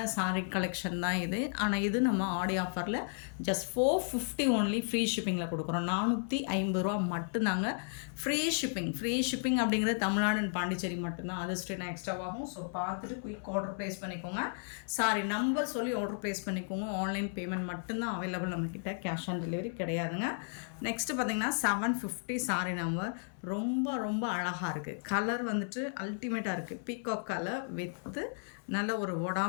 சாரீ கலெக்ஷன் தான் இது. ஆனால் இது நம்ம ஆடி ஆஃபரில் ஜஸ்ட் 450 ஒன்லி ஃப்ரீ ஷிப்பிங்கில் கொடுக்குறோம். 450 ரூபா மட்டும்தாங்க ஃப்ரீ ஷிப்பிங் அப்படிங்கிறது தமிழ்நாடு அண்ட் பாண்டிச்சேரி மட்டும்தான். அது ஸ்ட்ரெயினா எக்ஸ்ட்ராவாகும். ஸோ பார்த்துட்டு குயிக் ஆர்டர் ப்ளேஸ் பண்ணிக்கோங்க. சாரி நம்பர் சொல்லி ஆர்டர் ப்ளேஸ் பண்ணிக்கோங்க. ஆன்லைன் பேமெண்ட் மட்டும்தான் அவைலபிள் நம்மக்கிட்ட, கேஷ் ஆன் டெலிவரி கிடையாதுங்க. நெக்ஸ்ட்டு பார்த்திங்கன்னா 750 சாரி நம்பர். ரொம்ப அழகாக இருக்குது. கலர் வந்துட்டு அல்டிமேட்டாக இருக்குது. பீகாக் கலர் வித்து நல்ல ஒரு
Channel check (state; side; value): silent; right; digital silence